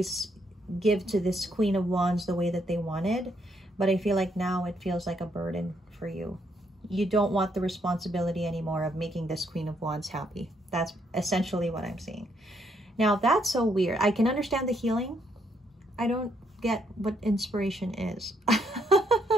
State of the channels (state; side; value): normal; both; correlation 0.73